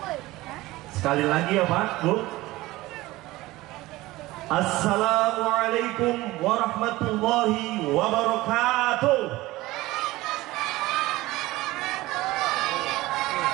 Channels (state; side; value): quieter; left; 18.7 dB